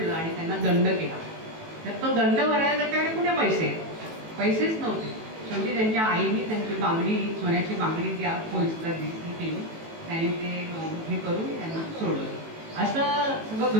आणि त्यांना दंड केला. तर तो दंड भरायला त्याच्याकडे कुठे पैसेच नव्हते. शेवटी त्यांच्या आईने त्यांची बांगडी सोन्याची बांगडी त्या पोलिसला केली त्यांनी ते हे करून त्यांना सोडलं. असं सगळं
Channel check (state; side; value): late; left; 18 ms